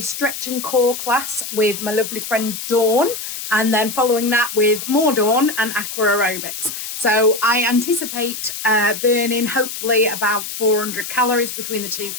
and core class with my lovely friend Dawn, and then following that with more Dawn and aqua aerobics. So I anticipate burning hopefully about 400 calories between the two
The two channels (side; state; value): left; noise; hiss, 7 dB below the sound